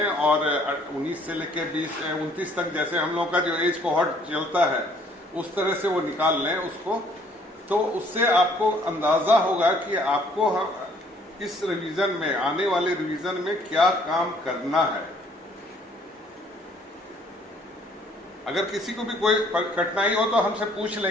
और 19 से लेकर 29 तक, जैसे हम लोगों का जो एज कोहॉर्ट चलता है उस तरह से वो निकाल लें उसको। तो उससे आपको अंदाजा होगा कि आपको इस रिवीजन में, आने वाले रिवीजन में क्या काम करना है। अगर किसी को भी कोई कठिनाई हो तो हमसे पूछ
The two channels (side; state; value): both; normal; correlation 0.61